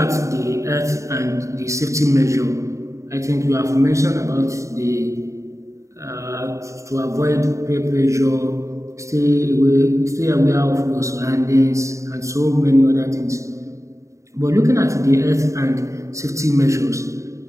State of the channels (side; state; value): left; late; 0.15 ms